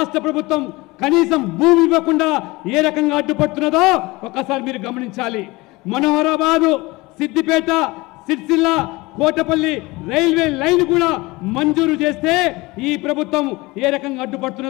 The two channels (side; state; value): right; quieter; 22.3 dB